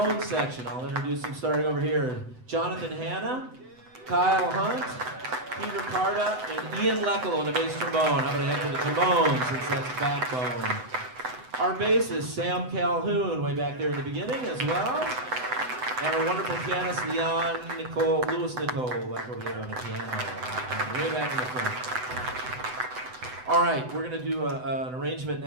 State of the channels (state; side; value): late; left; 7.9 ms